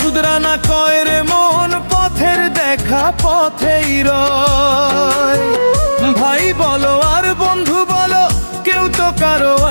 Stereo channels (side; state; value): both; inverted; correlation -1.00